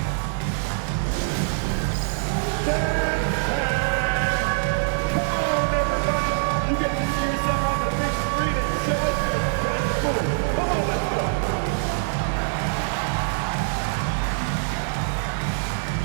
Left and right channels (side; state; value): left; silent; 63 dB below the other